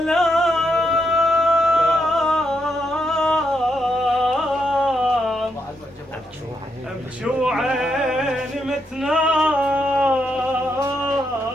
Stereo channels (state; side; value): normal; both; correlation 0.80